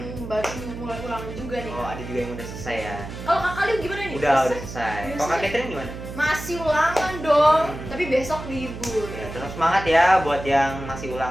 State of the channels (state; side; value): noise; right; hum, 10 dB below the sound